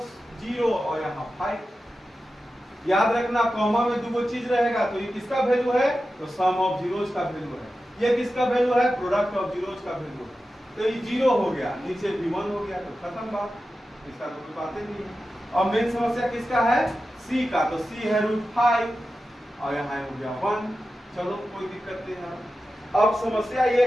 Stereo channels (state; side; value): normal; both; correlation 0.92